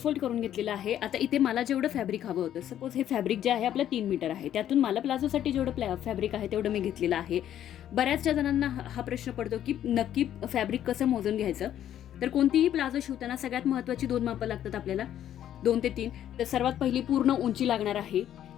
करून घेतलेलं आहे। आता इथे मला जेवढं फॅब्रिक हवं होतं, सपोज हे फॅब्रिक जे आहे आपलं 3 मीटर आहे, त्यातून मला प्लाझोसाठी जेवढं फॅब्रिक आहे तेवढं मी घेतलेलं आहे। बऱ्याचशा जणांना हा प्रश्न पडतो की नक्की फॅब्रिक कसं मोजून घ्यायचं। तर कोणतीही प्लाझो शिवताना सगळ्यात महत्त्वाची 2 मापं लागतात आपल्याला, 2 ते 3। तर सर्वात पहिली पूर्ण उंची लागणार आहे,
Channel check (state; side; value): quieter; right; 11.0 dB